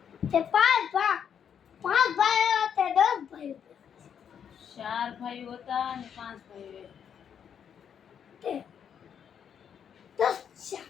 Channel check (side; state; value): right; quieter; 8.1 dB